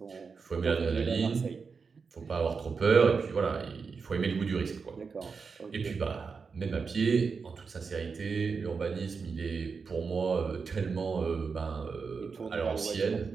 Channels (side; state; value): left; quieter; 5.2 dB